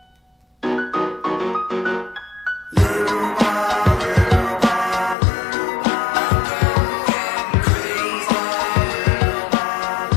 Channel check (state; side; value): drops out; right; at 5.2 s